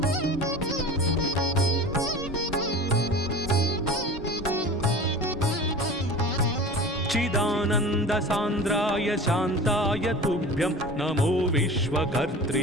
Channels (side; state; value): both; normal; correlation 0.37